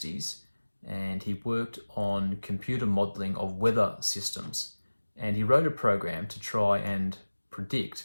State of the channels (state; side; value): inverted; both; correlation -1.00